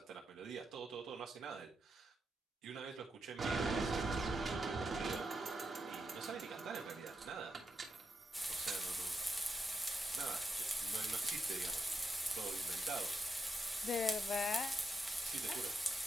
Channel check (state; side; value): normal; both; correlation 0.84